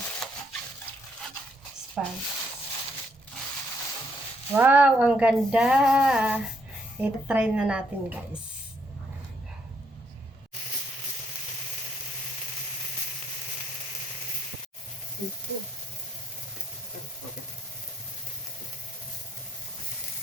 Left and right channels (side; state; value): both; normal; correlation 0.72